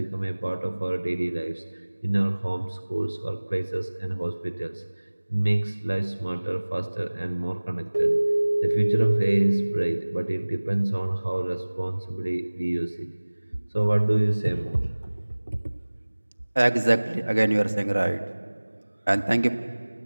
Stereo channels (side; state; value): both; inverted; correlation -1.00